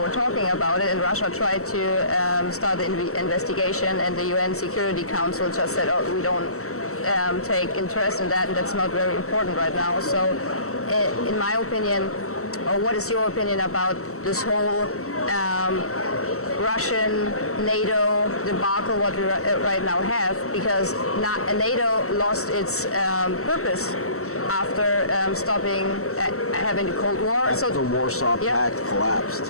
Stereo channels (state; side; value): late; right; 0.63 ms